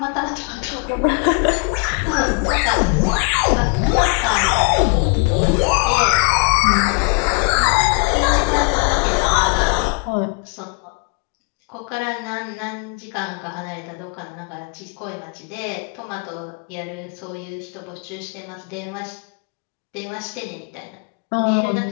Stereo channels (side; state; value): right; quieter; 34.1 dB